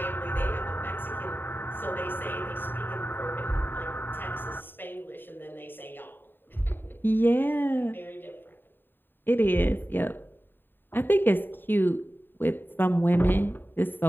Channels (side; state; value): right; late; 0.095 ms